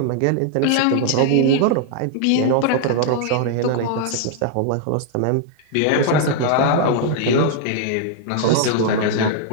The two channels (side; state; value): both; different; correlation -0.01